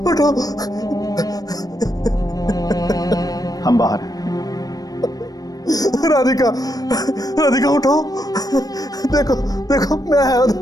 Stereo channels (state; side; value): late; right; 0.18 ms